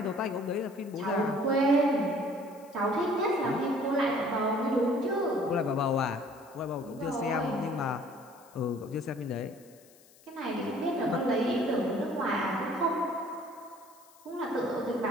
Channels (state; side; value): noise; left; hiss, 26 dB below the sound